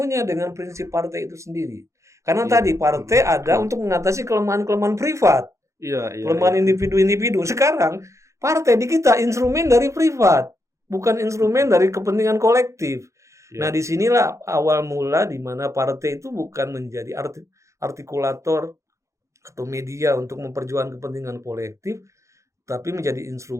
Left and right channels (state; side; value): late; left; 0.15 ms